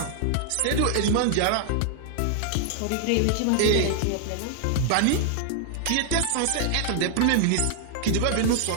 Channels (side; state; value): both; different; correlation 0.00